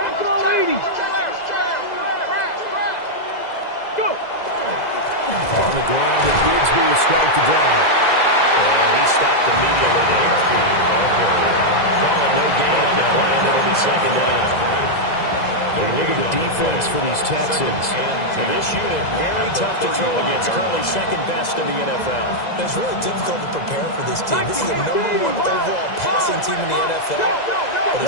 all 80. Go. On the ground, and Bigsby will strike the drive. And he stopped immediately there. Call it no gain on the play, and it'll be 2nd down. Look at the defense for these Texans. And this unit, very tough to throw against. Currently 2nd best in the NFL. It's really difficult to prepare for this team. This is the #1 overall passing team in the NFL. But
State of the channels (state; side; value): late; right; 2.0 ms